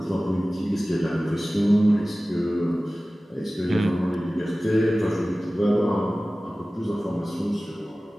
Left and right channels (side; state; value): both; normal; correlation 0.97